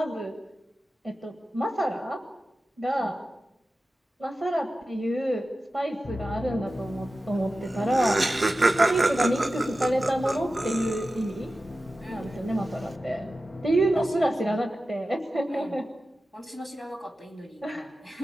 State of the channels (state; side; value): normal; both; correlation 0.94